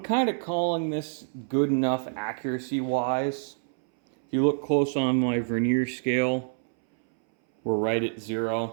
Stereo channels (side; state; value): left; silent; 60 dB below the other